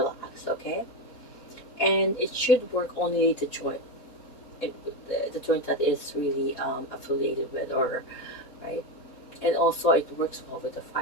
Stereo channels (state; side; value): normal; both; correlation 0.14